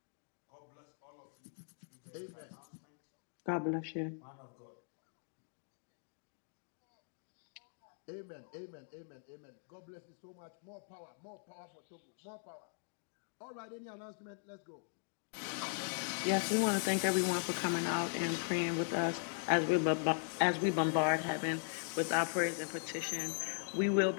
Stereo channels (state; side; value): silent; right; digital silence